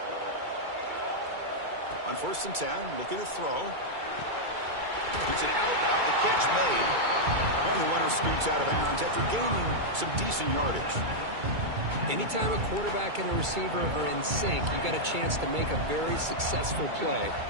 On 1st and 10, looking to throw. It's an out route, the catch made. And the runner scoots out of bounds after gaining some decent yardage. Anytime a quarterback and a receiver are in sync, you got a chance to make a very successful play.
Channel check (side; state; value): left; late; 2.3 ms